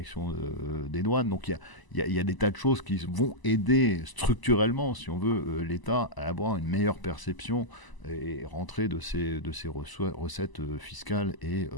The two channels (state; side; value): late; right; 1.0 ms